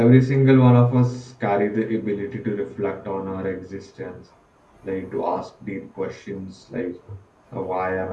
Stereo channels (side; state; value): both; identical; correlation 1.00